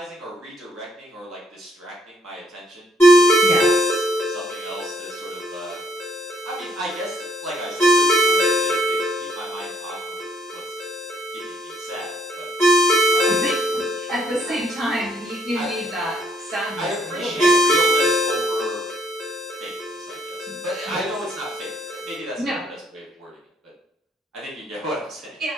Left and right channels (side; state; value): both; normal; correlation 0.68